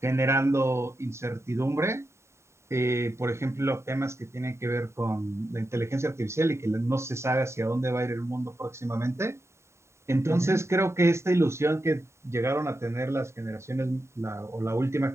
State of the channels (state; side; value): late; left; 0.13 ms